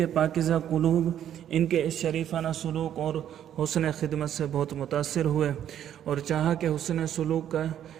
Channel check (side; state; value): left; quieter; 10.4 dB